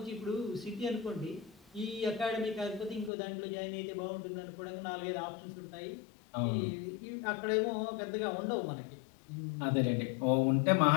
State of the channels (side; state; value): right; drops out; at 3.1 s